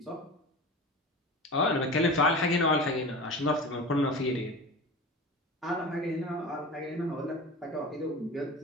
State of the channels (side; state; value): both; normal; correlation 0.32